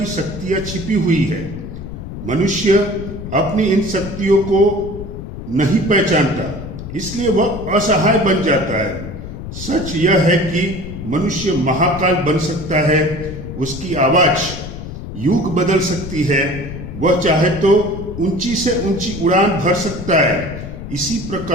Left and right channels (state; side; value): noise; left; rumble, 9 dB below the sound